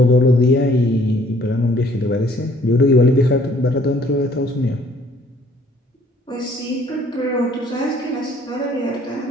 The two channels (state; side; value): normal; both; correlation 0.60